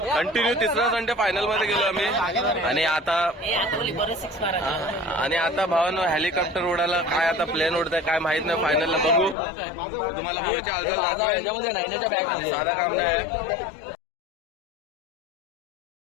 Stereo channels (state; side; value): drops out; right; at 9.3 s